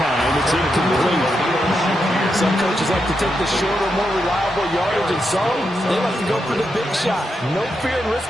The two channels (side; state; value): both; normal; correlation 0.84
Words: It's incomplete. Some coaches like to take the shorter, more reliable yardage, and some, they like to go for the big shot. No fear in